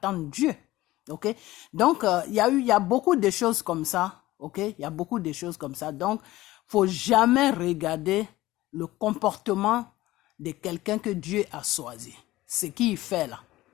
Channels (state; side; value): quieter; right; 17.2 dB